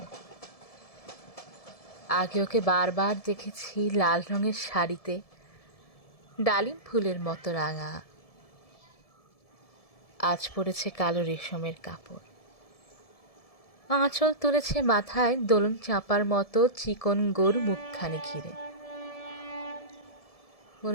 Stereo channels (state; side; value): late; right; 1.7 ms